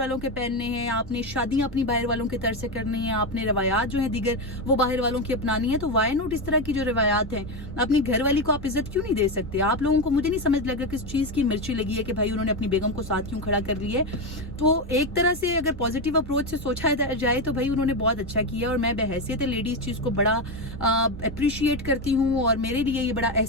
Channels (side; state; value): both; normal; correlation 0.12